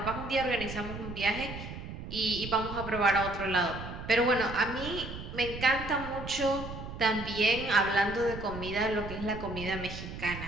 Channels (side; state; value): right; noise; rumble, 9 dB below the sound